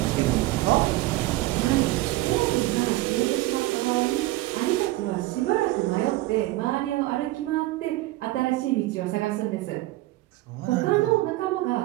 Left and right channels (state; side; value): quieter; left; 18.1 dB